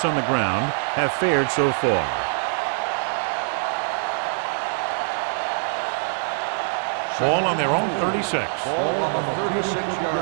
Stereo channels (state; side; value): silent; left; digital silence